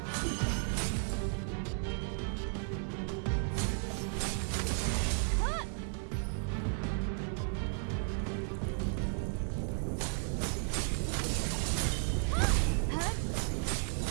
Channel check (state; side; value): silent; left; 55 dB below the other